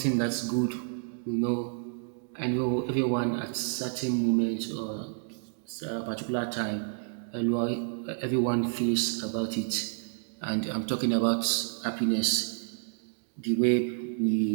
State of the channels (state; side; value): silent; left; digital silence